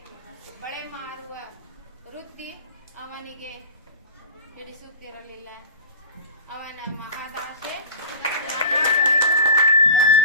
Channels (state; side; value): inverted; both; correlation -0.35